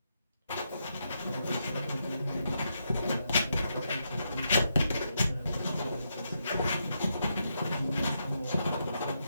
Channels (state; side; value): inverted; both; correlation -0.82